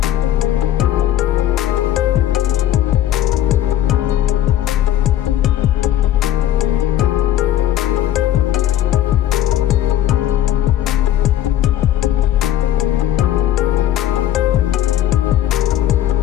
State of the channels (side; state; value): right; quieter; 12.1 dB